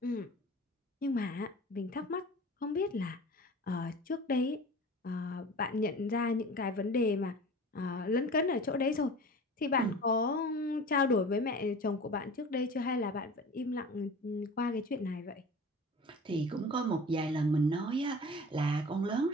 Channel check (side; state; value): both; normal; correlation 0.38